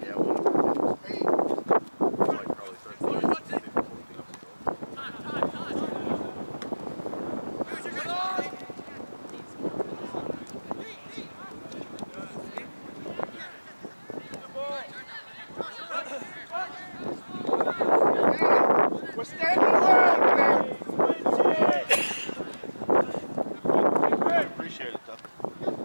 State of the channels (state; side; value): inverted; both; correlation -1.00